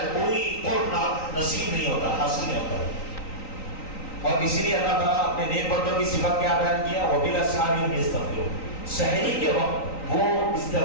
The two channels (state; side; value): late; right; 3.9 ms